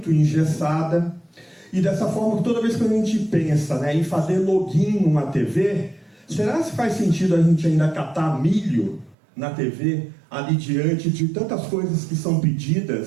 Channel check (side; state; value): left; drops out; at 9.2 s